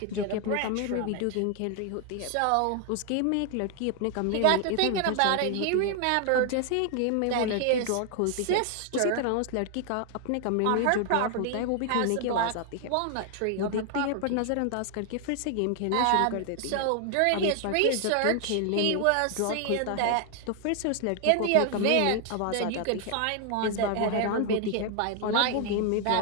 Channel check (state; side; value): different; both; correlation 0.00